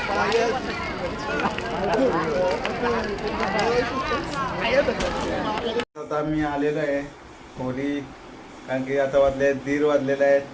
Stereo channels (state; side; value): identical; both; correlation 1.00